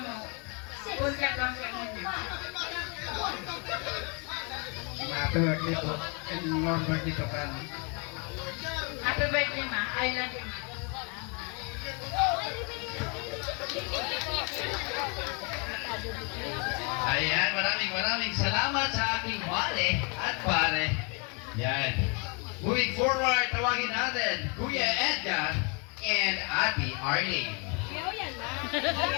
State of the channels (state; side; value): quieter; right; 34.3 dB